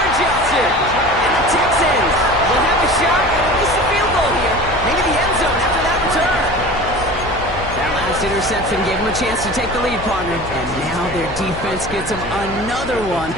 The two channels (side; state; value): left; noise; hum, 12 dB below the sound